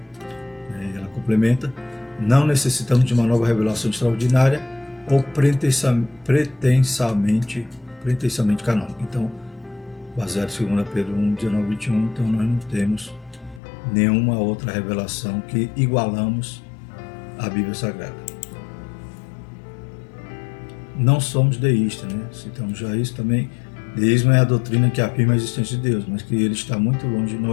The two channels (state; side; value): drops out; right; at 13.6 s